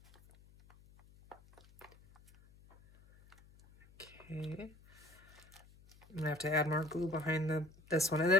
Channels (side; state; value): left; noise; hum, 24 dB below the sound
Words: Okay. I'm gonna have to add more glue behind this one. And